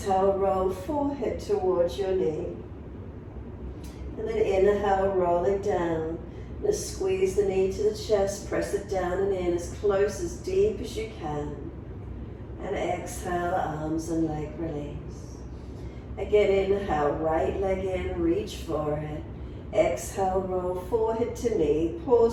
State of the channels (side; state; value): both; identical; correlation 1.00